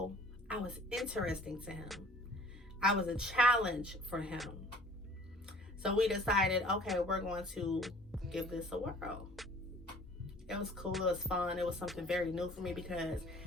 I was interesting to him. I was a challenge for him. So we decided, okay, we're going to give this a whirl. It was cool. It was fun. It was something very new for me because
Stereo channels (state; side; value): normal; both; correlation 0.51